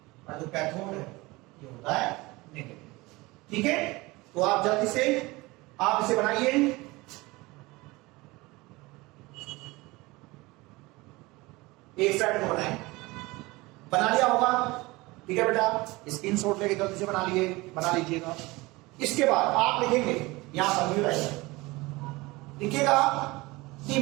और जो कैथोड है ये होता है नेगेटिव, ठीक है। तो आप जल्दी से आप इसे बनाइए, एक साइड को बनाएं, बना लिया होगा, ठीक है बेटा, स्क्रीनशॉट लेके जल्दी से बना लीजिएगा। इसके बाद आप लिखेंगे यहां पर लिखिएगा the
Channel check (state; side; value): quieter; left; 22.1 dB